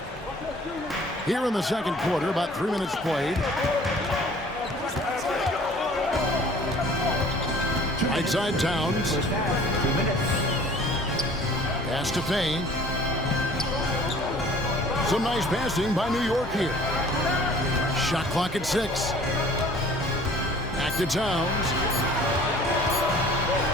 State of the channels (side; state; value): both; normal; correlation 0.51